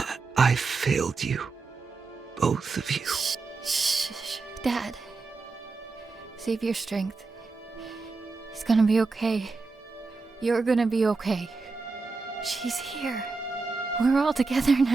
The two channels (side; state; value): left; quieter; 4.1 dB